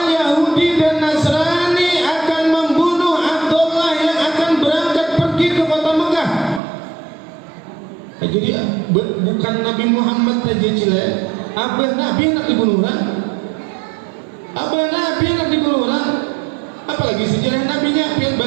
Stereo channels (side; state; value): left; drops out; at 6.6 s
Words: Yahudi dan Nasrani akan membunuh Abdullah yang akan berangkat pergi ke kota Mekah. Jadi bukan Nabi Muhammad saja cile, abah Nabi nak dibunuh orang. Abah Nabi nak dibunuh orang. Apalagi sejarah Nabinya, pian